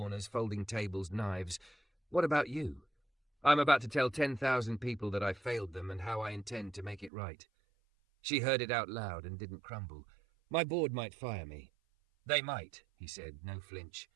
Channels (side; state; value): left; drops out; at 7.1 s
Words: folding tables, knives. What about you? I'm about to tell 10,000 people that I failed them and how I intend to make it right. She heard it out loud and didn't crumble. My board might fire me. They might, he said, no flinch.